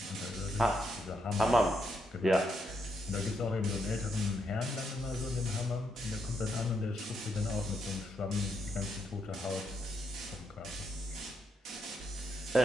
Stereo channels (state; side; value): normal; both; correlation 0.79